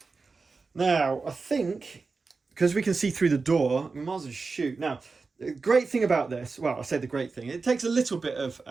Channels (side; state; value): left; quieter; 4.3 dB